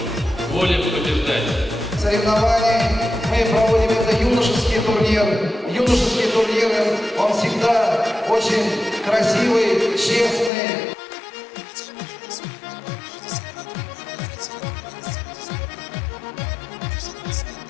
воля побеждать. Соревнования мы проводим это юношеский турнир. Юношеские турниры, он всегда очень красивый, честный. Хотя и прожил на свои неполных 60 лет, во благо развития региона сделать успел немало. Почти 20 лет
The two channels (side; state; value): right; drops out; at 10.5 s